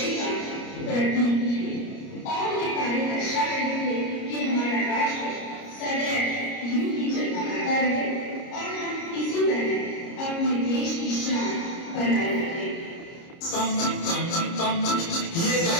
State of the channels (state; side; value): late; right; 29 ms